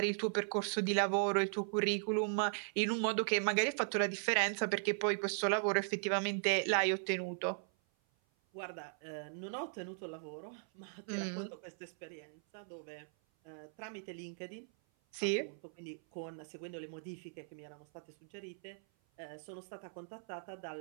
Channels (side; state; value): left; silent; 52 dB below the other